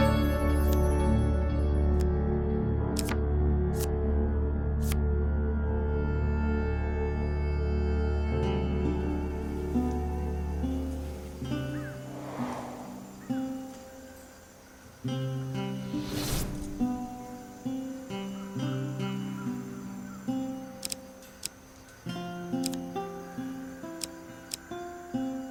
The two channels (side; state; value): both; identical; correlation 1.00